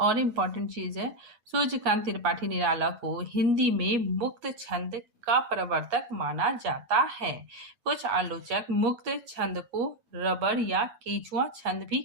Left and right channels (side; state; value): left; late; 9.3 ms